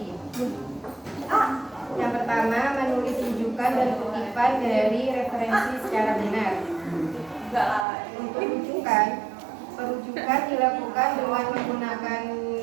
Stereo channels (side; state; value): left; drops out; at 7.9 s